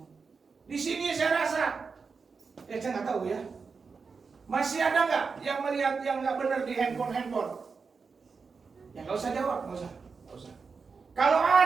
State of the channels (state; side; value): quieter; left; 5.0 dB